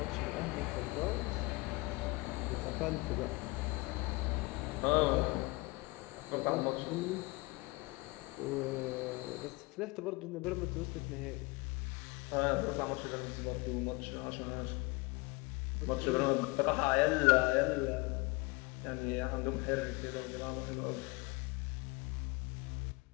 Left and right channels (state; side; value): quieter; right; 25.1 dB